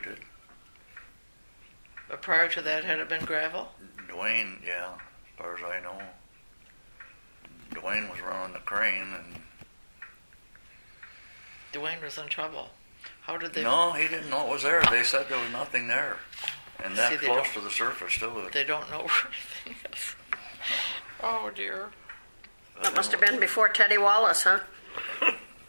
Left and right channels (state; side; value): inverted; both; correlation -1.00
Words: it. But prior to that, had it been gravel? Dwayne, yeah, as far as I know. Dwayne was running the crane, and Dwayne was in trouble. How did they... no, he didn't know it was there. They said there was nothing there, and See, that they close don't- to the surface too. They don't know where anything is. Oh, dear. That must have been before Teddy Wallace, huh?